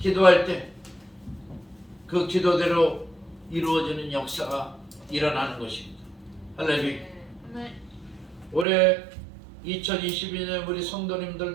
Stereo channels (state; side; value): drops out; left; at 8.7 s